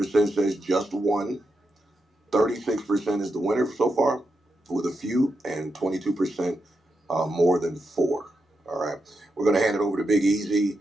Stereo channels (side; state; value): both; normal; correlation 0.86